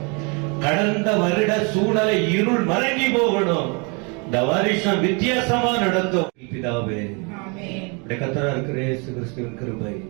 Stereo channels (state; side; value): quieter; left; 32.6 dB